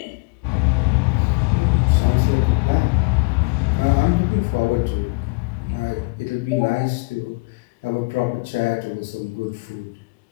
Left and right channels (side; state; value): right; quieter; 28.7 dB